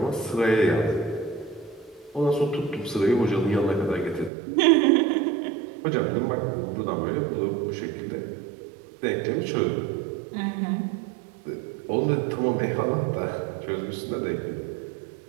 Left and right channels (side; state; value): left; drops out; at 4.3 s